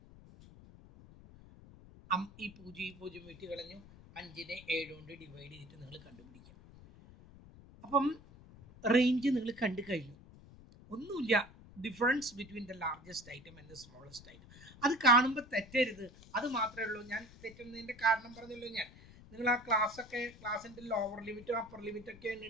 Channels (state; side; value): noise; left; rumble, 20 dB below the sound